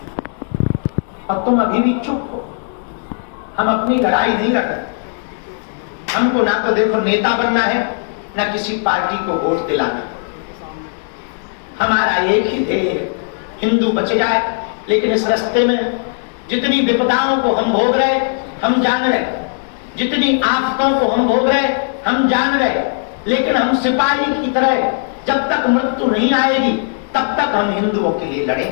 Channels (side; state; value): right; silent; digital silence